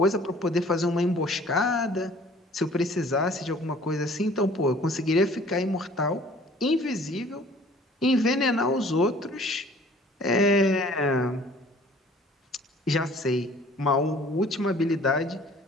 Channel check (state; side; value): normal; both; correlation 0.52